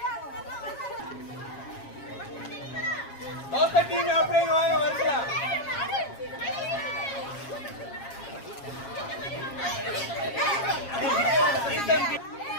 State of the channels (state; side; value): late; right; 7.3 ms